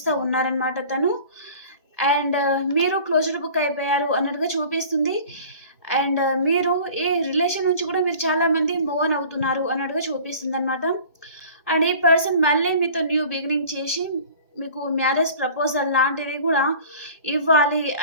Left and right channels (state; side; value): inverted; both; correlation -0.44